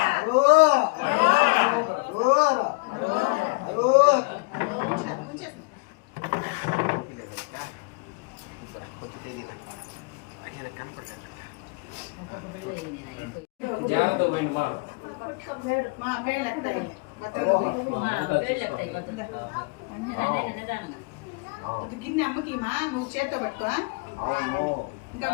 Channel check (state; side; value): quieter; right; 29.3 dB